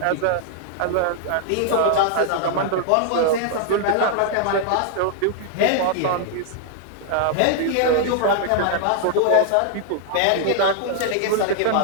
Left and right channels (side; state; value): both; different; correlation 0.00